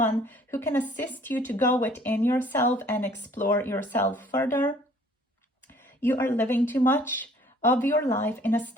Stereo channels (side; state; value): both; normal; correlation 0.56